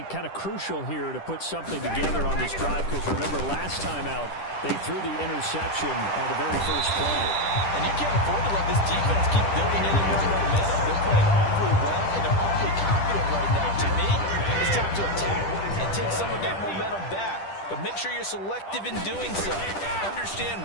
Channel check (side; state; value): right; late; 10 ms